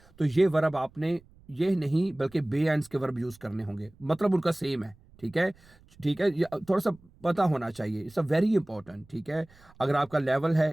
तो ये वर्ब आपने ये नहीं बल्कि बे आइंस के वर्ब यूज करने होंगे, मतलब उनका सेम है। ठीक है। ठीक है, ये थोड़ा सा पता होना चाहिए, इट्स अ वेरी इंपॉर्टेंट। ठीक है। अगर आपका लेवल है,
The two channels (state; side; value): noise; right; rumble, 27 dB below the sound